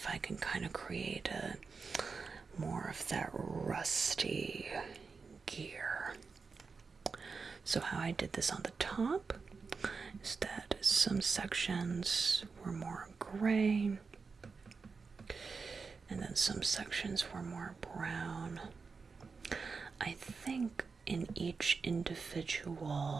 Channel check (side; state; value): left; quieter; 4.8 dB